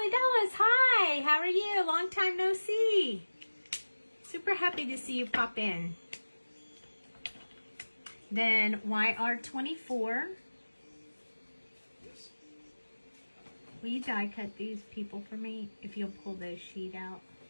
he does. Hi. How are you? Long time no see. Super happy to see you pop in. Then YR24. Yes. Will you die cut these people for me? If you'll pull the sheet out,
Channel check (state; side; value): inverted; both; correlation -1.00